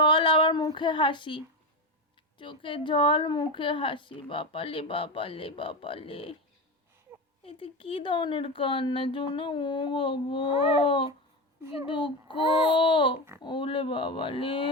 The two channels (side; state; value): both; normal; correlation 0.18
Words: আবার মুখে হাসি, চোখে জল মুখে হাসি। বাপালে বাপালে বাপালে, এতে কি ধরনের কান্না জোনা? ও বাবা কি দুঃখ। ওলে বাবালে